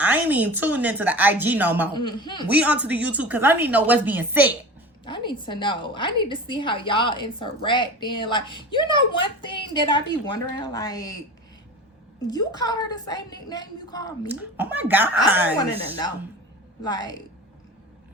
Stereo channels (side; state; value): both; normal; correlation 0.34